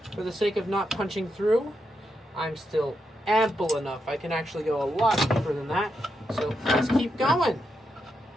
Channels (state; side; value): normal; both; correlation 0.84